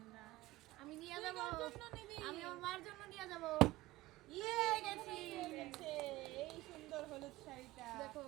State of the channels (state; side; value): quieter; left; 18.1 dB